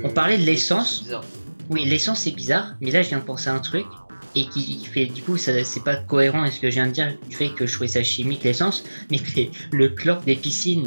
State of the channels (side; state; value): both; inverted; correlation -1.00